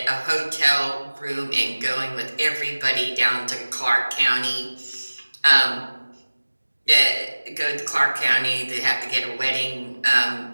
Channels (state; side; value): inverted; both; correlation -1.00